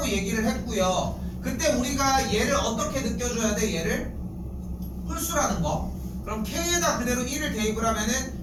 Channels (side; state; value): both; identical; correlation 1.00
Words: 얘기를 했고요. 그때 우리가 얘를 어떻게 느껴줘야 돼? 얘를 홀수라는 거. 그럼 K에다 그대로 1을 대입을 하면은